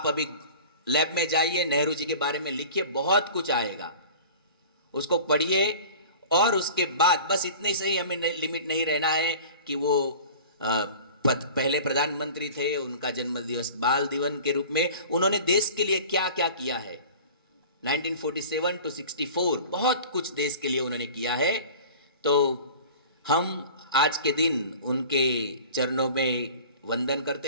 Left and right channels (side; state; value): both; inverted; correlation -0.41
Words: अभी लैब में जाइए, नेहरू जी के बारे में लिखिए, बहुत कुछ आएगा, उसको पढ़िए। और उसके बाद बस इतने से ही हमें लिमिट नहीं रहना है कि वो पहले प्रधानमंत्री थे, उनका जन्मदिवस बाल दिवस के रूप में उन्होंने देश के लिए क्या क्या किया है। 1947 to 64 बहुत कुछ देश के लिए उन्होंने किया है। तो हम आज के दिन उनके चरणों में वंदन